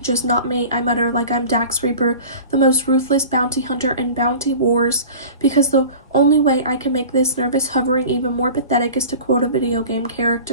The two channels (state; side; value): inverted; both; correlation -0.39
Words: just not me, I mutter like I'm Dax Reaper, the most ruthless bounty hunter in Bounty Wars, because the only way I can make this nervous hovering even more pathetic is to quote a video game